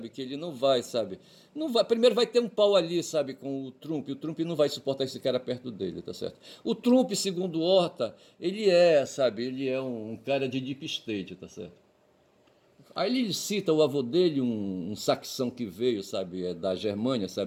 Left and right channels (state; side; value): identical; both; correlation 1.00